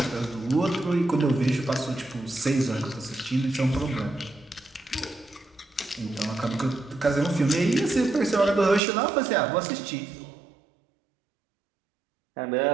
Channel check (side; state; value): left; drops out; at 8.8 s